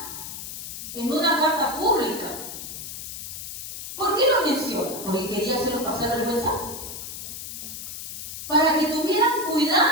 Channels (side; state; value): left; noise; hiss, 9 dB below the sound